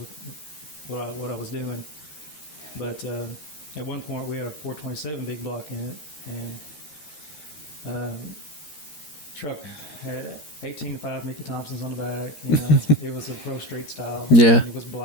what I was doing. But at one point we had a 427 big block in it, and truck had 18.5 Mickey Thompsons on the back, you know. It was a Pro Street style, and it was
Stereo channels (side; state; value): right; late; 13 ms